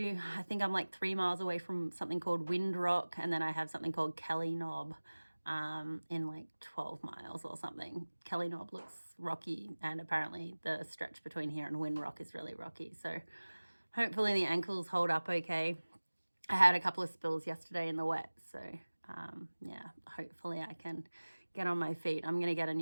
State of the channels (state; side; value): inverted; both; correlation -1.00